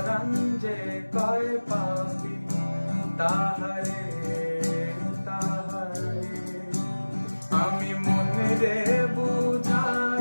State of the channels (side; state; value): both; inverted; correlation -1.00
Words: যে কয় পাপি তাহারে তাহারে, আমি মনে রে